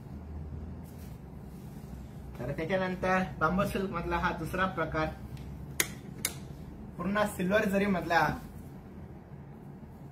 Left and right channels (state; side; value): identical; both; correlation 1.00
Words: तर त्याच्यानंतर बांबू सिल्क मधला हा दुसरा प्रकार, पूर्ण सिल्वर जरी मधला,